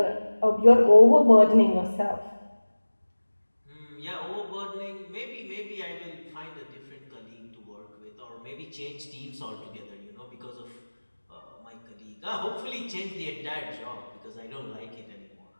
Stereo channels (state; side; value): inverted; both; correlation -1.00